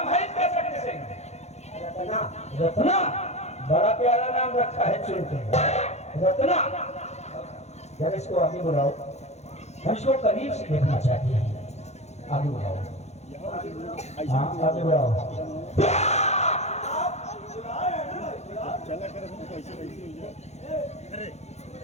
है इसका? शक्ति सिंह। रत्ना, बड़ा प्यारा नाम रखा है चुनके। रत्ना, जरा इसको आगे बुलाओ, हम इसको करीब से देखना चाहते हैं। आगे बुलाओ, हाँ आगे बुलाओ।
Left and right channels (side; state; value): right; late; 0.32 ms